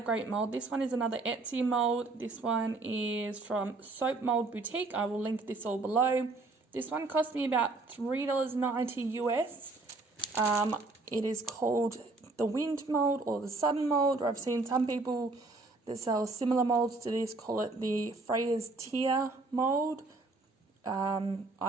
mould. This one is another Etsy mould. This one is from Soap Mould Boutique. I will link this all below. This one cost me about $3.90 US. It is called the Wind Mould or the Sun Mould, or I've seen some people that sell similar moulds to this call it the Freya's Tear mould.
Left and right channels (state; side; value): quieter; left; 3.4 dB